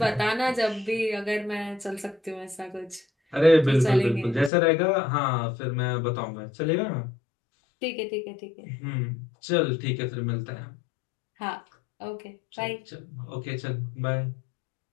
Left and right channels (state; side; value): drops out; right; at 4.5 s